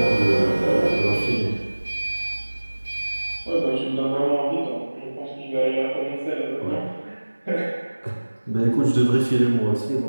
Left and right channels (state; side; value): inverted; both; correlation -1.00